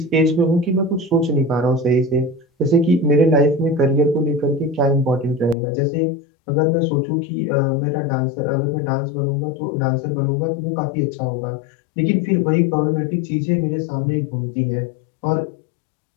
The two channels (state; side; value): drops out; right; at 5.6 s